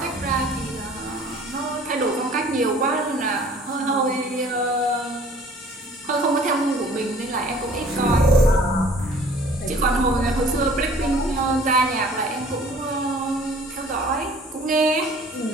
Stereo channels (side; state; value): both; normal; correlation 0.52